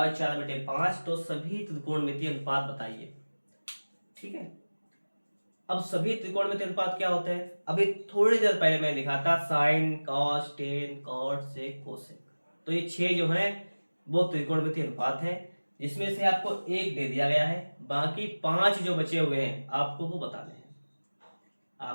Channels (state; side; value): inverted; both; correlation -1.00